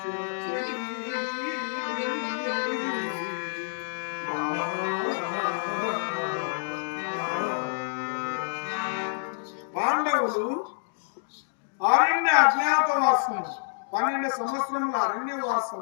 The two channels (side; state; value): right; silent; digital silence